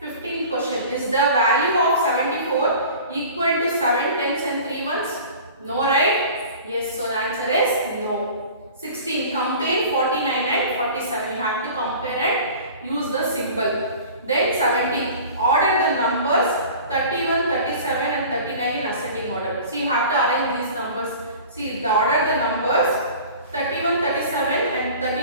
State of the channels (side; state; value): both; inverted; correlation -0.41